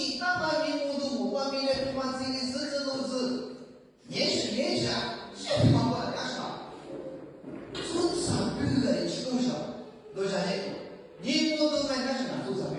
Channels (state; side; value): identical; both; correlation 1.00